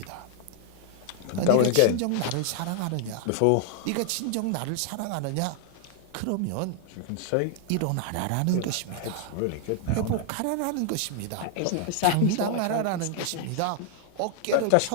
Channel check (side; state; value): both; different; correlation 0.00